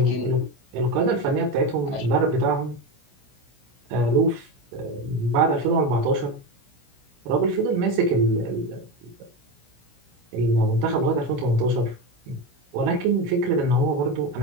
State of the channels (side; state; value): left; late; 17 ms